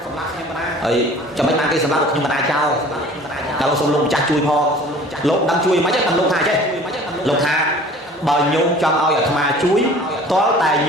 ấy cho mấy mang cái sầm lắc được nhưng mà na trao kalau xong lông cha chui pho lông đang chui mấy chắc tầm lông hà chứ lông hà bờ nhôm trong ao ở thà chuối có tài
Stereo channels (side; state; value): both; normal; correlation 0.47